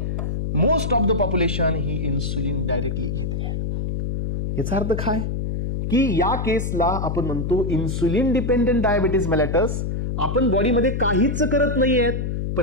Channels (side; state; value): left; noise; hum, 2 dB below the sound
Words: मोस्ट ऑफ द पॉप्युलेशन ही इन्सुलिन डायरेक्टली घेते. याचा अर्थ काय की या केसला आपण म्हणतो इन्सुलिन डिपेंडेंट डायबिटीज मेलाइटस. आपण बॉडीमध्ये काहीच करत नाहीयेत